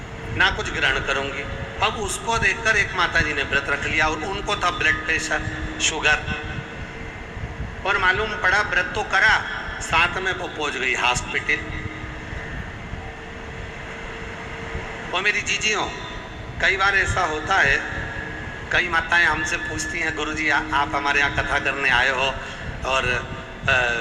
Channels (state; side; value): identical; both; correlation 1.00